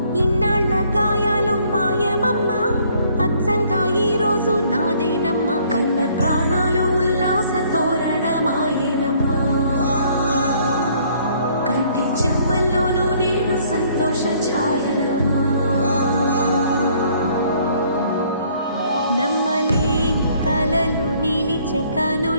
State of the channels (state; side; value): inverted; both; correlation -0.62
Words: ఇన్నాళ్ళ గాయాలు మాయమమ్మా, అచ్చంగా ఈ రోజు నాదేనమ్మా, కన్న ప్రాణాలు ఉల్లాస తోరణమాయేనమ్మా, కంటి చెమ్మల్లోనూ నేను సంతోష ఛాయలమ్మా, నమ్మలేని కలలు నిలిచే